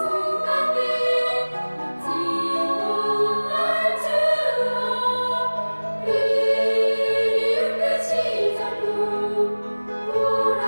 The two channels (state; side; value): inverted; both; correlation -1.00